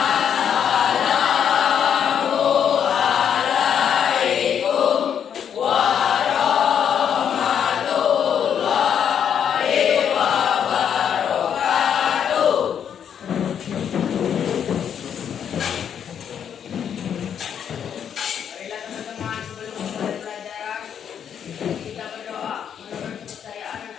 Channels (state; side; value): quieter; right; 8.4 dB